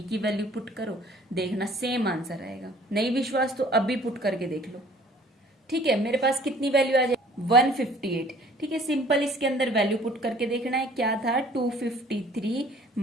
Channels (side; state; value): both; normal; correlation 0.53